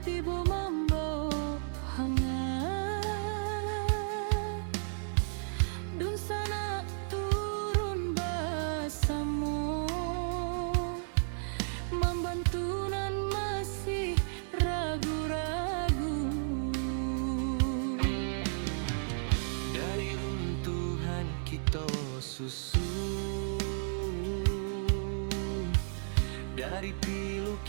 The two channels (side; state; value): left; silent; 55 dB below the other